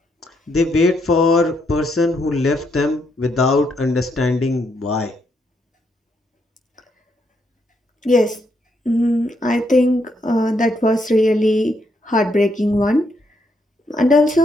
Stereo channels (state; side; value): normal; both; correlation 0.76